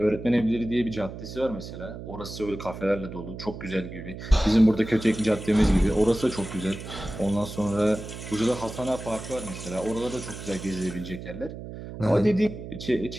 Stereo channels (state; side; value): noise; right; hum, 11 dB below the sound